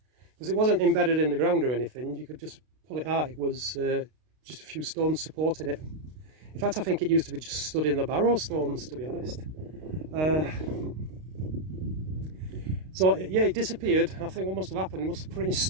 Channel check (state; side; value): late; left; 32 ms